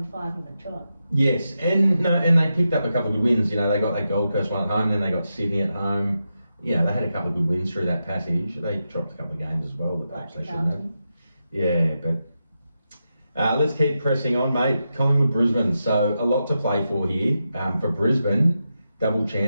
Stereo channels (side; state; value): both; inverted; correlation -0.88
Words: 5 on the trot. Yes, and they picked up a couple of good wins. They got that Gold Coast one at home, then they got Sydney at home. They had a couple of good wins through that passage. They dropped a couple of games as well that perhaps they shouldn't have. Yeah, but let's keep pressing on, mate. Collingwood, Brisbane. So a lot to play for here. For Brisbane, double